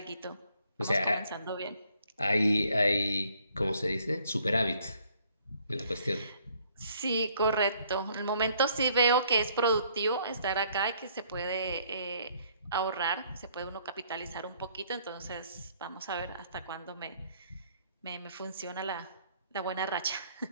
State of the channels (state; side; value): inverted; both; correlation -0.64